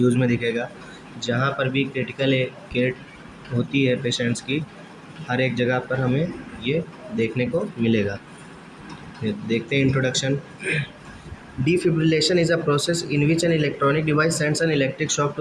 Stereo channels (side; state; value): both; identical; correlation 1.00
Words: में दिखेगा। जहाँ पर भी क्रिटिकल केयर होती है पेशेंट्स की, हर एक जगह पर हमें ये देखने को मिलेगा। देखते हैं introduction. Defibrillation is a process in which an electronic device sends an electric shock